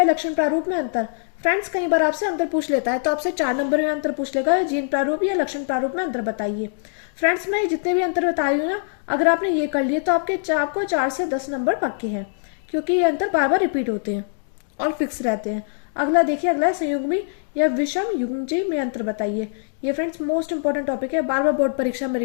लक्षण प्रारूप में अंतर। फ्रेंड्स कई बार आपसे अंतर पूछ लेता है, तो आपसे 4 नंबर में अंतर पूछ लेगा, जीन प्रारूप या लक्षण प्रारूप में अंतर बताइए। फ्रेंड्स मैं जितने भी अंतर बता रही हूँ ना, अगर आपने ये कर लिए तो आपको 4 से 10 नंबर पक्के हैं, क्योंकि ये अंतर बार बार रिपीट होते हैं और फिक्स रहते हैं। अगला देखिए, अगला है संयुग्मी या विषम युग्मजी में अंतर बताइए। ये फ्रेंड्स मोस्ट इंपॉर्टेंट टॉपिक है, बार बार बोर्ड परीक्षा में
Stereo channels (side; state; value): right; silent; digital silence